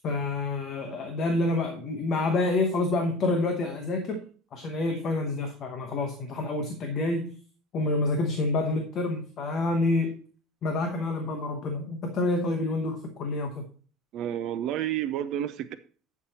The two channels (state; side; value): normal; both; correlation 0.34